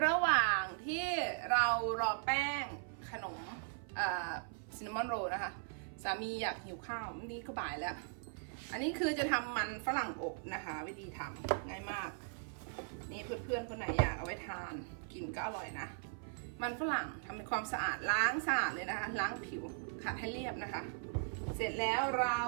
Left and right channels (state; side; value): silent; left; 52 dB below the other